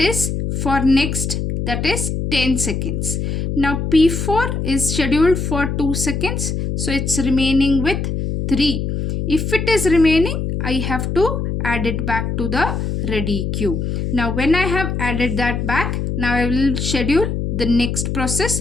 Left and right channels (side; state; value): left; noise; hum, 2 dB below the sound